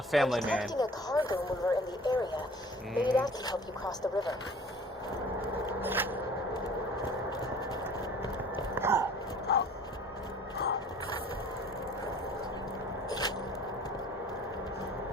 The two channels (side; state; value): both; normal; correlation 0.48